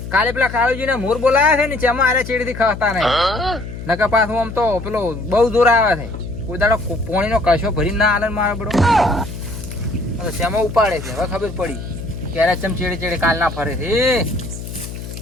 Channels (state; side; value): noise; left; hum, 10 dB below the sound